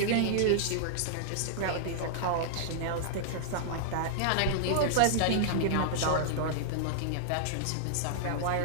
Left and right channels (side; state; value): both; different; correlation -0.02